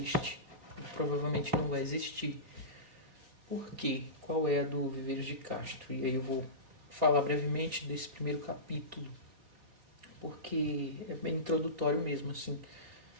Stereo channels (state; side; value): late; left; 3.7 ms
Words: e provavelmente não vai existir. Por quê? Qual é a do Viveiros de Castro? E aí eu vou falar brevemente desse primeiro capítulo, porque é bem introdutório mesmo, assim,